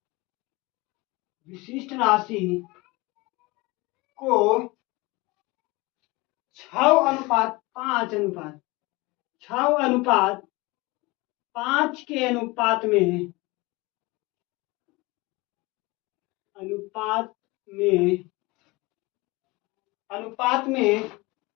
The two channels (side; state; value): right; quieter; 23.4 dB